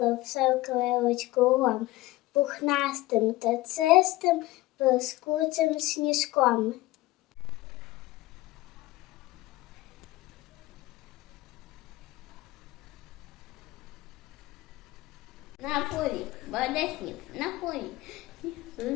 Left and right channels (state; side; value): quieter; right; 18.8 dB